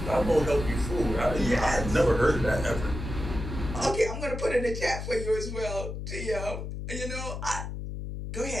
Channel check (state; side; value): noise; left; hum, 6 dB below the sound